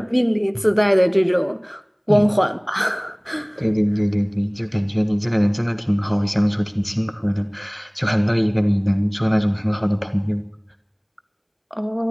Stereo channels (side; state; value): both; identical; correlation 1.00